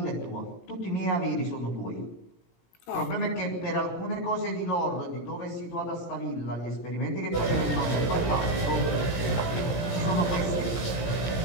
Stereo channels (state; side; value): late; right; 17 ms